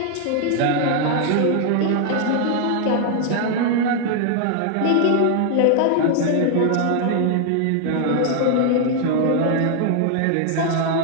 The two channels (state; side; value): different; both; correlation 0.00